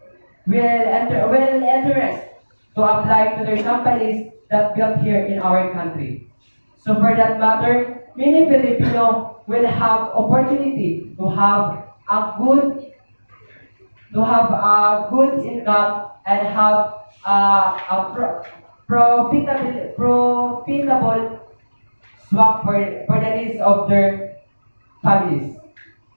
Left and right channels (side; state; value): both; inverted; correlation -1.00